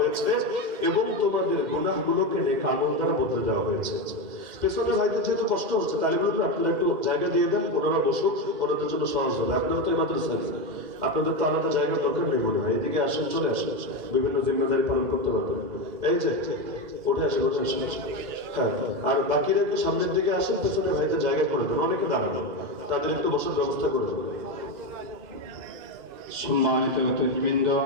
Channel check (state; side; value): late; left; 2.0 ms